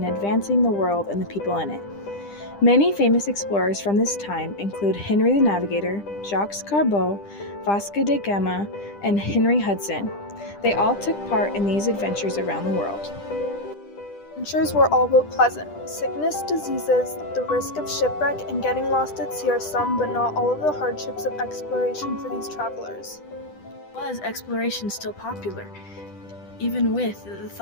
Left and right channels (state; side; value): late; right; 10 ms